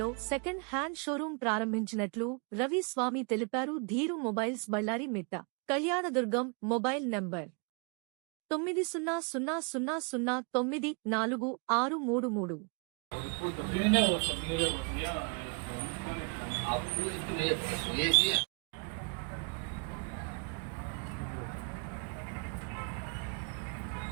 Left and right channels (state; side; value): quieter; left; 36.9 dB